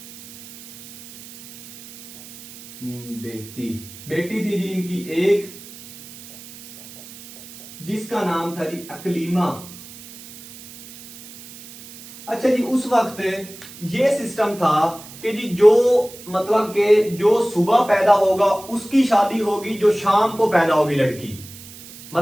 बेटी थी जी इनकी एक, जिसका नाम था जी अकलीमा। अच्छा जी, उस वक्त ये सिस्टम था कि जी जो मतलब कि जो सुबह पैदा होगा उसकी शादी होगी, जो शाम को पैदा होगी लड़की,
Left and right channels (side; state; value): right; noise; hiss, 17 dB below the sound